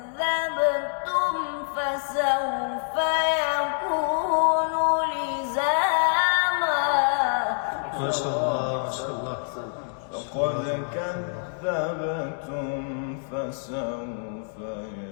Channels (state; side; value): silent; right; digital silence